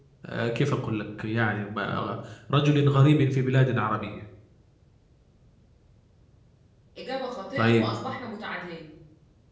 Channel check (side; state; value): both; identical; correlation 1.00